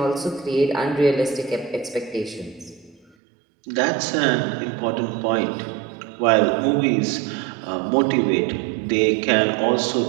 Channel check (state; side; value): drops out; left; at 3.1 s